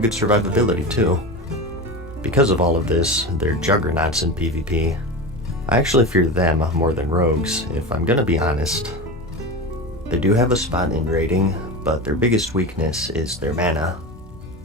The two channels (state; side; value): normal; both; correlation 0.25